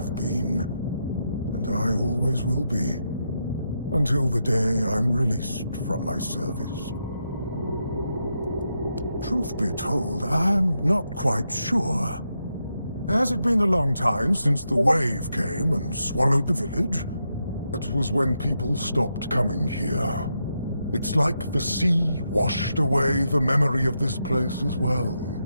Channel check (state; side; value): inverted; both; correlation -0.84